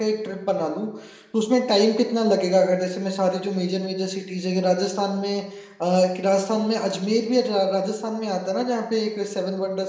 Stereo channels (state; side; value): identical; both; correlation 1.00